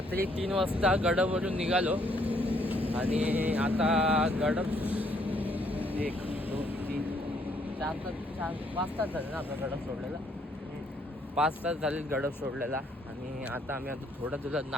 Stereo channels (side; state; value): both; normal; correlation 0.68